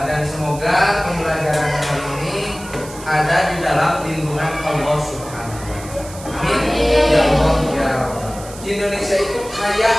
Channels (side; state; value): right; noise; hiss, 16 dB below the sound